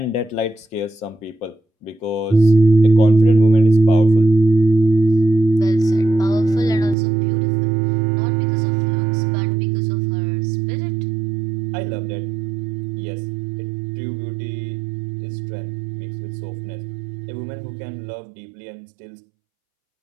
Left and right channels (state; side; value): drops out; left; at 7.0 s